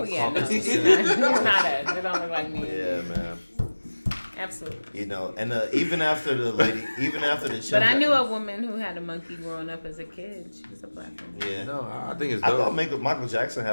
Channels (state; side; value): inverted; both; correlation -1.00